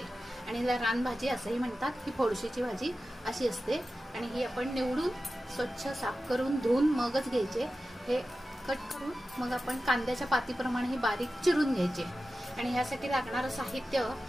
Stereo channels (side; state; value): both; normal; correlation 0.93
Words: आणि रानभाजी असंही म्हणतात। ही फोडशीची भाजी अशी असते आणि ही आपण निवडून स्वच्छ साफ करून धुवून मगच घ्यायचे। हे कट करून मग आपण कांद्याच्या पातीप्रमाणे ही बारीक चिरून घ्यायचे। आणि ह्यासाठी लागणारं साहित्य,